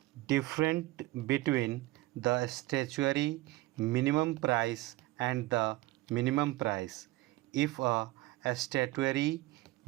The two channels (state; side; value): quieter; left; 19.1 dB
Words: difference between the statutory minimum price and the minimum price. If a statutory